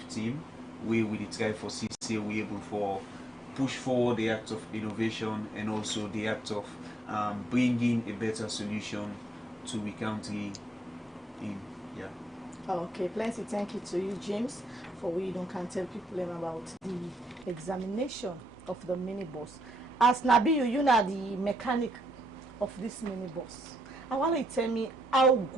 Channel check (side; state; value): both; normal; correlation 0.75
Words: team we will try for CC we able for push forward the act of innovation and also the act of bringing a better solution to the country in. Yeah. Okay, plenty thank you to you, James, for we don't can tell people about the examination of the minibus. As Nabi, you know the mechanic of this minibus. I want you to tell me how